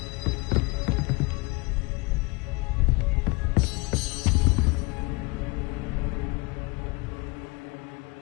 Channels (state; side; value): quieter; right; 26.8 dB